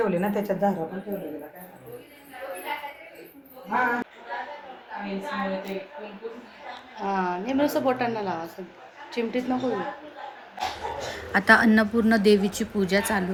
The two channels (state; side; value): identical; both; correlation 1.00